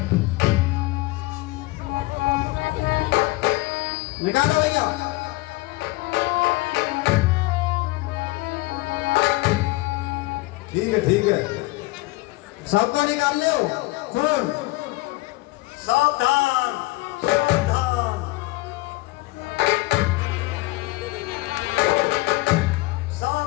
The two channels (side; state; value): right; quieter; 20.9 dB